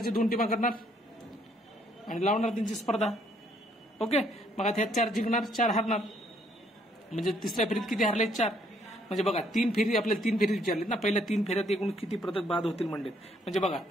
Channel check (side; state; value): both; normal; correlation 0.67